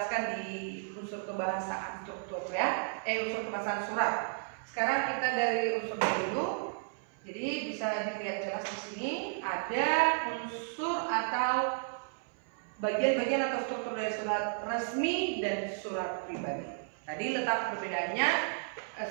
di unsur kebahasaan struktur ya, unsur kebahasaan surat. Sekarang kita dari unsur dulu. Jadi bisa dilihat jelas di sini ada unsur atau bagian-bagian atau struktur dari surat resmi dan surat pribadi. Tadi letak perbedaannya,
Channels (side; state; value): left; silent; 56 dB below the other